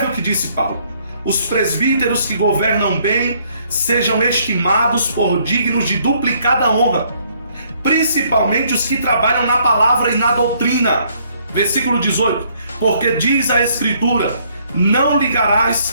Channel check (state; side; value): inverted; both; correlation -0.67